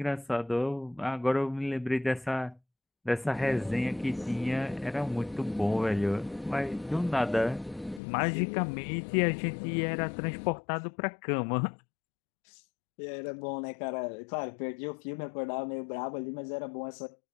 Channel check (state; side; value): drops out; right; at 8.0 s